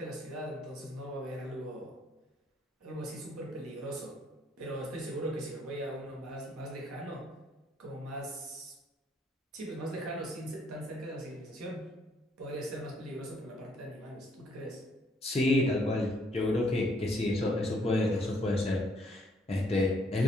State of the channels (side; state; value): both; normal; correlation 0.67